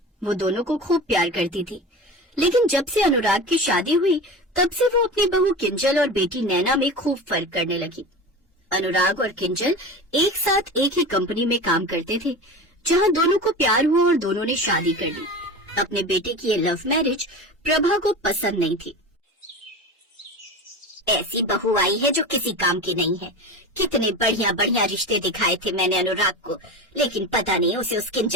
वो दोनों को खूब प्यार करती थी। लेकिन जब से अनुराग की शादी हुई तब से वो अपनी बहू किंजल और बेटी नैना में खूब फर्क करने लगी। अनुराग और किंजल एक साथ एक ही कंपनी में काम करते थे, जहां दोनों को प्यार हुआ और दोनों ने शादी कर ली। अपने बेटे की ये लव मैरिज प्रभा को पसंद नहीं थी। ऐसी बहू आई है जो किसी काम की नहीं है। कितने बढ़िया बढ़िया रिश्ते दिखाए थे मैंने अनुराग को, लेकिन पता नहीं उसे उस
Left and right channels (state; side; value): normal; both; correlation 0.29